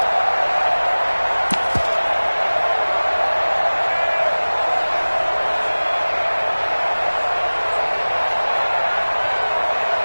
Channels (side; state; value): both; inverted; correlation -1.00